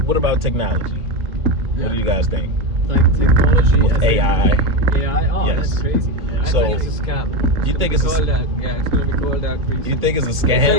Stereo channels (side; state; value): left; late; 3.5 ms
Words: about technology? What do you guys think? Like technology With as AI. AI. Oh, Yes. that's crazy. I So- think it's a scam. You think it's Called a, that. Yeah, it's gonna be called that. you think it's a It's